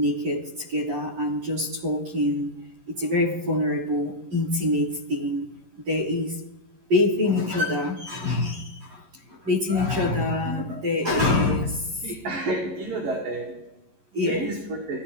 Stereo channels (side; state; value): left; late; 11 ms